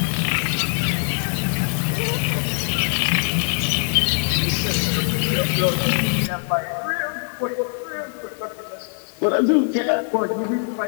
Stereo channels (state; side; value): silent; right; 61 dB below the other